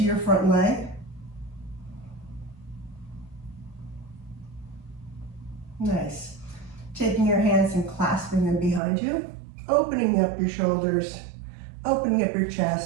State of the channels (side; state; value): left; drops out; at 8.8 s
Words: your front leg. Nice. Taking your hands and clasping them behind you, opening up your shoulders, opening up your